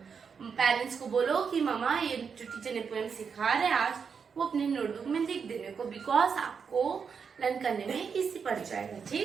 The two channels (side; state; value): left; quieter; 6.2 dB